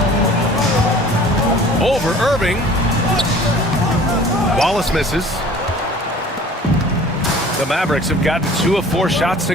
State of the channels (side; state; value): both; normal; correlation 0.47